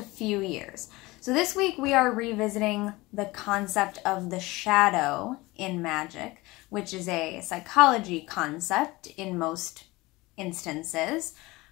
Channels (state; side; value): quieter; right; 21.2 dB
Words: few years. So this week we are revisiting the concept of the shadow in magic, which is a psychology concept in most instances.